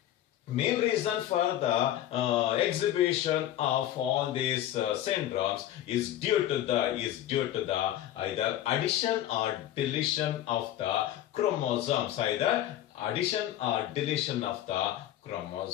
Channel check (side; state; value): right; quieter; 12.6 dB